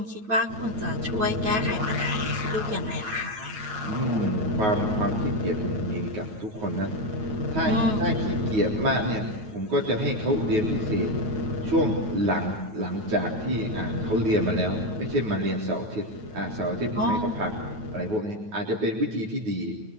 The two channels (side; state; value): left; late; 9.3 ms